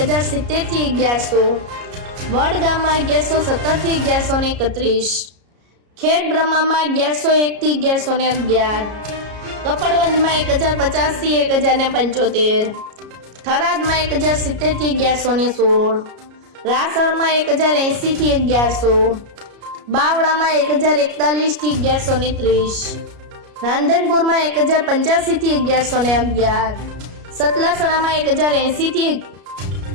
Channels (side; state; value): left; late; 33 ms